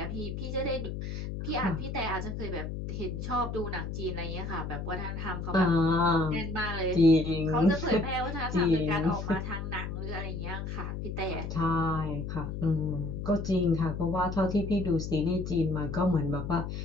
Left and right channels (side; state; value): left; noise; hum, 5 dB below the sound